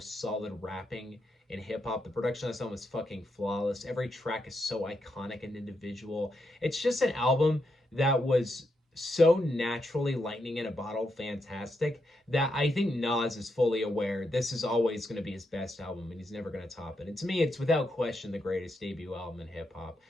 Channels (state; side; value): normal; both; correlation 0.82